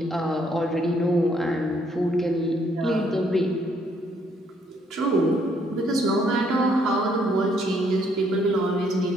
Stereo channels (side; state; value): both; normal; correlation 0.69